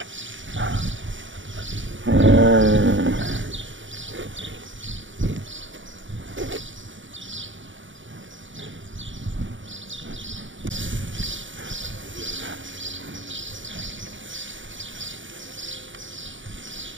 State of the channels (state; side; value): late; left; 0.56 ms